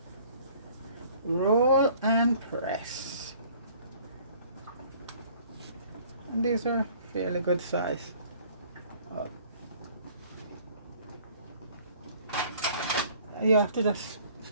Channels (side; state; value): both; inverted; correlation -0.54